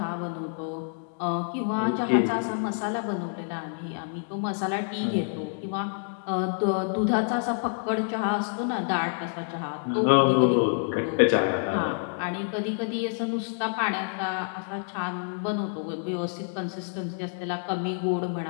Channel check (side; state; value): right; silent; 60 dB below the other